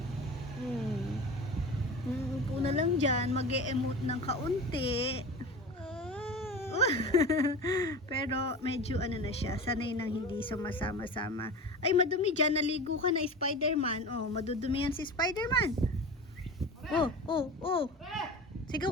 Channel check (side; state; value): both; normal; correlation 0.32